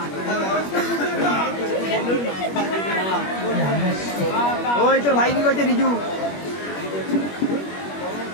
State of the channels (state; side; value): late; right; 21 ms